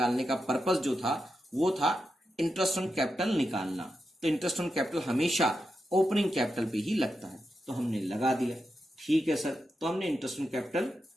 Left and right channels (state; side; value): normal; both; correlation 0.87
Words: का पर्पस जो था वो था इंटरेस्ट ऑन कैपिटल निकालना। तो इंटरेस्ट ऑन कैपिटल हमेशा ओपनिंग कैपिटल पे ही लगता है, तो हमने लगा दिया। ठीक है सर, तो हमने इंटरेस्ट ऑन कैपिटल